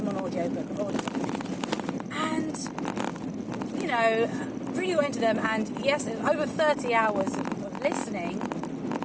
on audiobook. And, really went into them, and yes, it was over 30 hours of listening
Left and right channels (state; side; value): identical; both; correlation 1.00